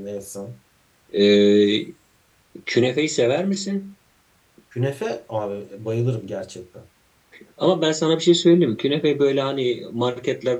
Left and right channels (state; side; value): identical; both; correlation 1.00